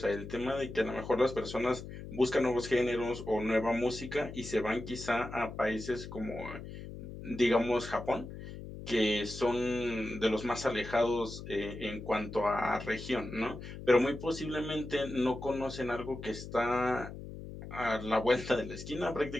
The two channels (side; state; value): left; noise; hum, 11 dB below the sound